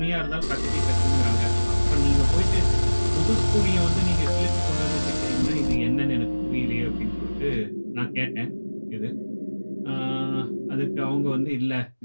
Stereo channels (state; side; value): inverted; both; correlation -1.00